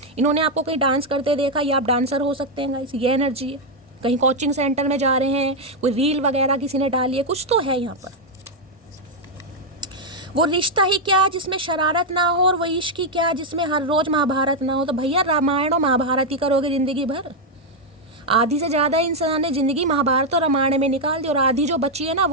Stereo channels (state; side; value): normal; both; correlation 0.00